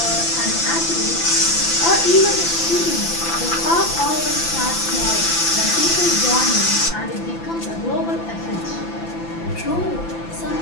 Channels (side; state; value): right; late; 6.0 ms